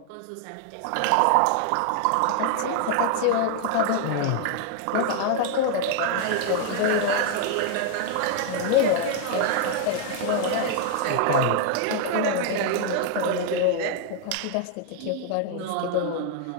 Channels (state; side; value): different; both; correlation 0.00